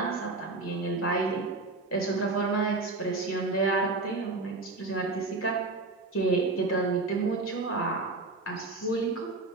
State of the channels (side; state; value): left; quieter; 3.4 dB